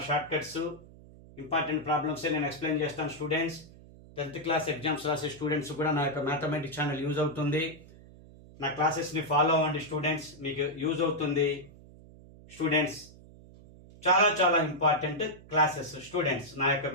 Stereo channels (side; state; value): right; noise; hum, 21 dB below the sound